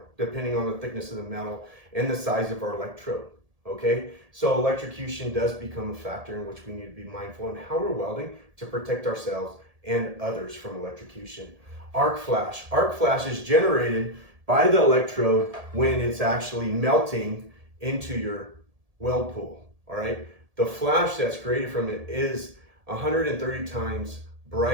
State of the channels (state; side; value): late; left; 1.7 ms